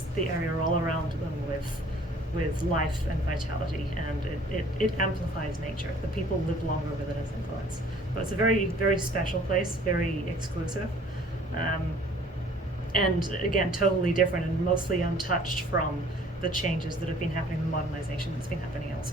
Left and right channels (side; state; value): both; normal; correlation 0.54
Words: the area all around them with life and vitality, and it amplifies nature. The people live longer with it as influence. But it's a very, very special place, very exclusive, and again, totally different and mostly untouched from the changes that have been happening, the modernization that's been happening